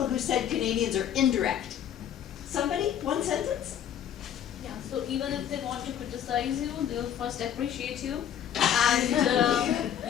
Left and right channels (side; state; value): right; quieter; 9.7 dB